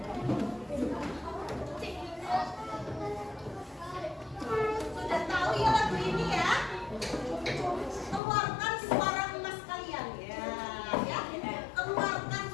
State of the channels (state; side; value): drops out; right; at 8.2 s